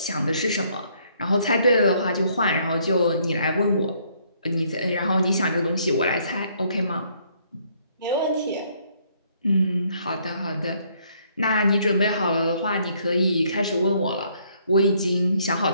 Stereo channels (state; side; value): inverted; both; correlation -0.67